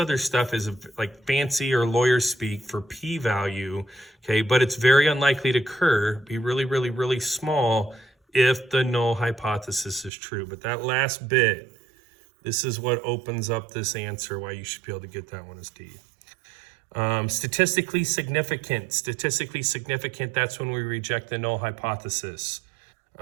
stuff is like fancy or lawyer speak for p-value, okay? But it's very unlikely to occur, be really, really, really small if the null hypothesis is true. But that last bit, this is what opens up this answer, why you should be able to get that one as D. Statistically significant, that's when we reject the null hypothesis.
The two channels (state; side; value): drops out; left; at 10.1 s